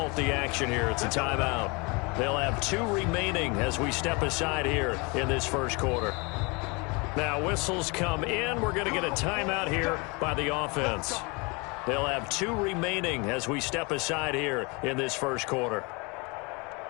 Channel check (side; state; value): right; quieter; 28.8 dB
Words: the action here. It's a timeout. They'll have 2 remaining as we step aside here in this first quarter. Now whistles come in. We're going to get a timeout here by the offense. They'll have 2 remaining as we step aside here in this first quarter.